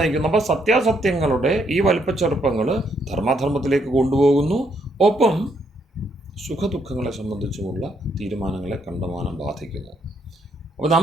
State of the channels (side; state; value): both; normal; correlation 0.73